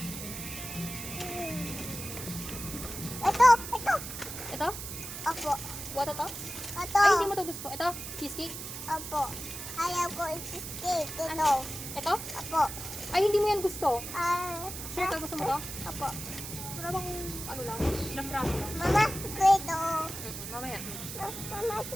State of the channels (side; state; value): right; noise; hiss, 8 dB below the sound